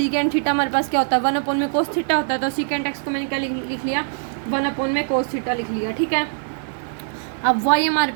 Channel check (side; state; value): left; silent; digital silence